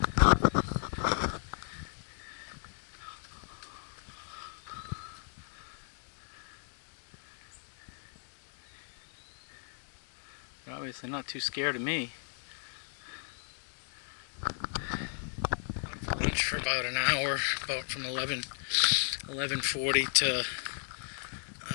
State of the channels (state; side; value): silent; right; 54 dB below the other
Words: obviously not too scared of me. Lunch for about an hour, about from 11:40 to